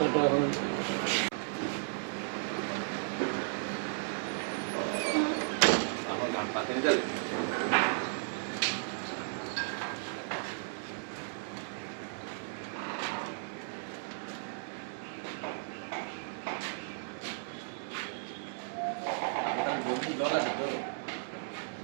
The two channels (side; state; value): left; silent; 55 dB below the other